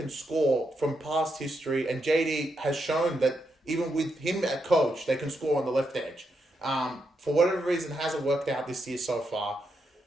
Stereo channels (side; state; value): both; normal; correlation 0.82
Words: score from past history. And JD has shown that even with him at coach, they can score on the left edge. For whatever reason, hasn't worked out this year so far.